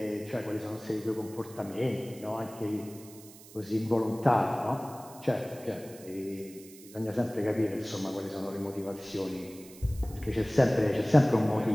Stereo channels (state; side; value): noise; right; hiss, 20 dB below the sound